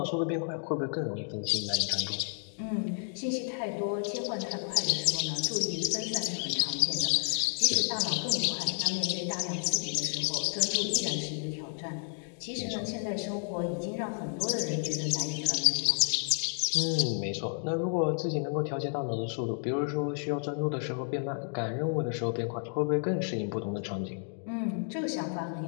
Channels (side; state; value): right; silent; 57 dB below the other